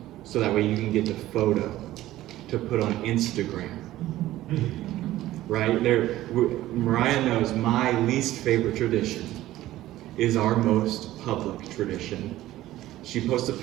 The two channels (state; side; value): quieter; left; 15.2 dB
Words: so that way you can get the photo to put on Instagram. Right? Mariah knows my least favorite tradition is our most public tradition. She posts a